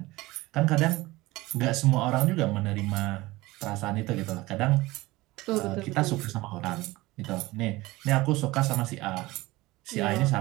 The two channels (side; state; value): left; quieter; 19.9 dB